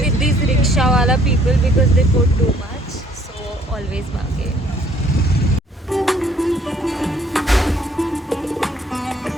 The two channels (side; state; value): both; normal; correlation 0.61